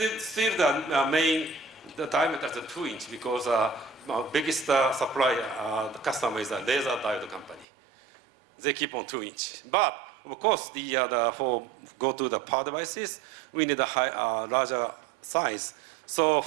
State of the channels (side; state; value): left; drops out; at 7.7 s